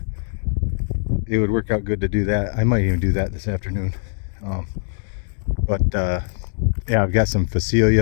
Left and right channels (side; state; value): right; silent; digital silence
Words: it would work out good to do that. I might even do that this afternoon. Yeah, I've got some